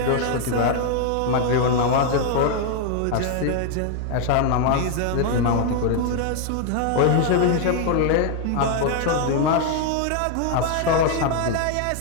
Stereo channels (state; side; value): different; both; correlation 0.00